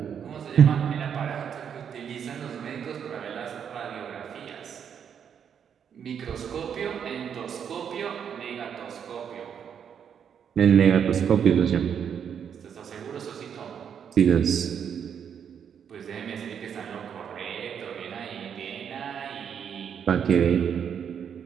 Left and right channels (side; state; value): left; quieter; 7.9 dB